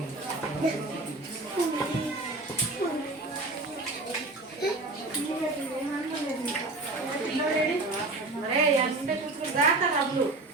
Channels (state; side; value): quieter; left; 3.1 dB